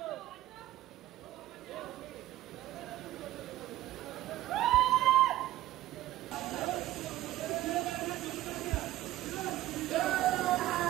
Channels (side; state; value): left; quieter; 15.0 dB